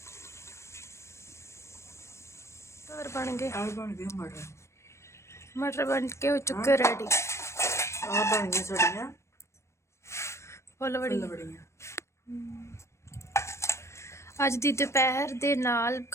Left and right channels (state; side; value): late; right; 0.13 ms